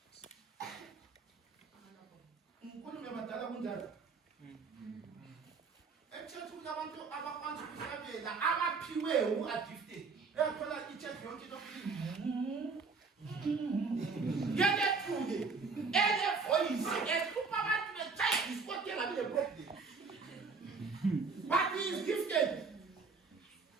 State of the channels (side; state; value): left; quieter; 4.6 dB